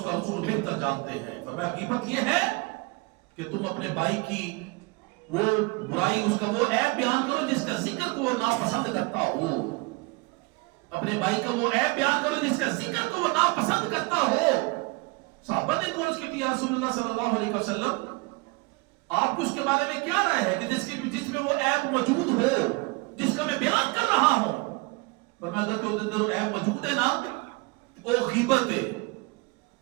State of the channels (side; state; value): left; quieter; 26.5 dB